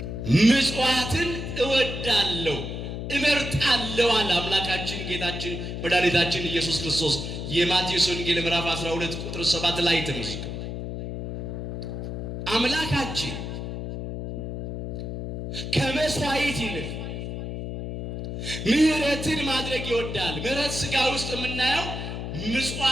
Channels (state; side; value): noise; left; hum, 6 dB below the sound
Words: ምጽዋትን እወዳለሁ እመርጣለሁ አለ አምላካችን ጌታችን መድኃኒታችን ኢየሱስ ክርስቶስ። የማቴዎስ ወንጌል ምዕራፍ 12 ቁጥር 7 ላይ ተመዝግቧል። አምላካችን ከመስዋዕት ይልቅ ምሕረትን ማድረግ ይወዳል። ምሕረት ሥጋ ውስጥ የምናየው